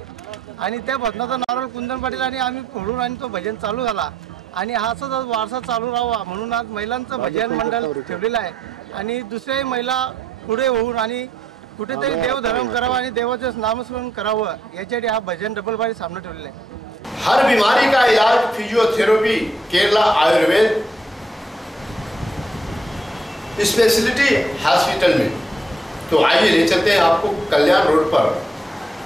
आणि त्या भजनाचा नारळ कुंदन पाटील आणि आम्ही फोडून आणि तो भजन चालू झाला आणि हा असाच वारसा चालू राहावा म्हणून आज महिलांचं भजन मंडळ ठेवलेलं आहे आणि दुसऱ्याही महिला पुढे होऊन आणि कुठेतरी देवधर्म करावा आणि देवाचं नामस्मरण करावं याच्यासाठी हा भजन डबल बारी सामना ठेवलेला आहे। हर बीमारी का इलाज physiotherapy Kerala Ayurveda speciality hospital में। तो आइए ले चलते हैं आपको कल्याण रोड पर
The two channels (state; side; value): normal; both; correlation 0.73